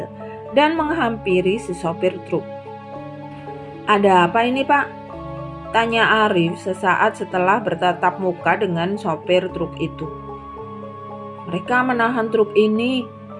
dan menghampiri si sopir truk. Ada apa ini, Pak? Tanya Arif sesaat setelah bertatap muka dengan sopir truk itu. Mereka menahan truk ini.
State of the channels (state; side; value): identical; both; correlation 1.00